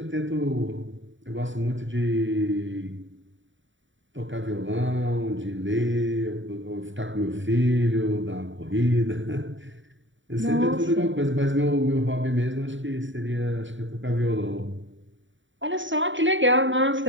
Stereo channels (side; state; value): left; late; 0.55 ms